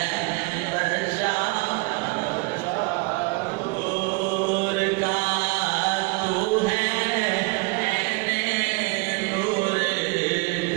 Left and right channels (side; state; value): left; quieter; 26.3 dB